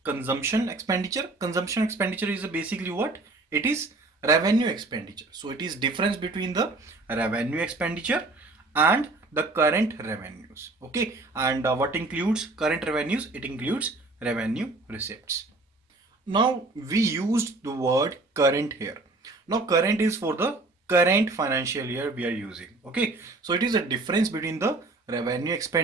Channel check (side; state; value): left; quieter; 3.2 dB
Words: consumption expenditure. Consumption expenditure is basically what? It is revenue expenditure. So it is difference between the revenue expenditure and the current revenues. Okay, and what includes current revenues? It includes revenue receipts. Now we used the word current here. Now current is for the current financial year we are using. Okay, so it is a difference between the revenue